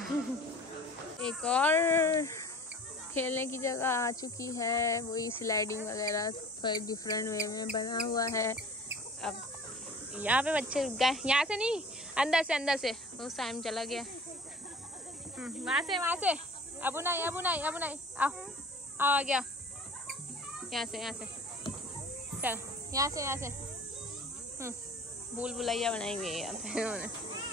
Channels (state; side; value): normal; both; correlation 0.45